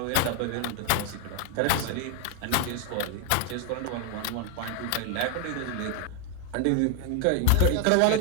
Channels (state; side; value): different; both; correlation 0.00